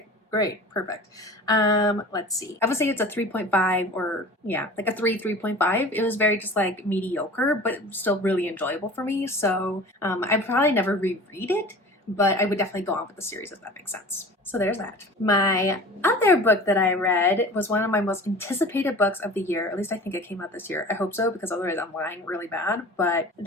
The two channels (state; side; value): normal; both; correlation 0.39